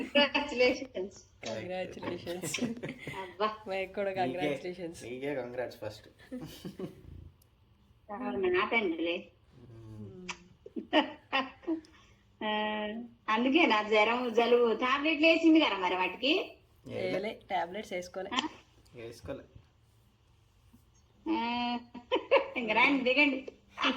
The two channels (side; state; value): both; identical; correlation 1.00